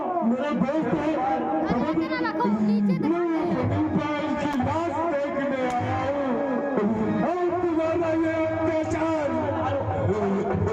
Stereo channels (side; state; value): both; identical; correlation 1.00